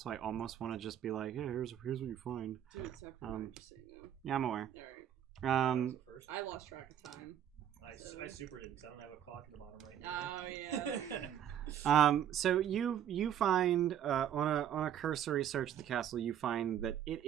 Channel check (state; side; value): quieter; left; 10.1 dB